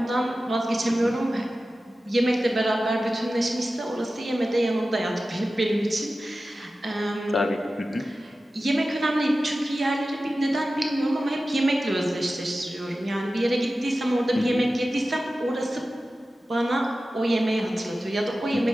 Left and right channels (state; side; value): normal; both; correlation 0.94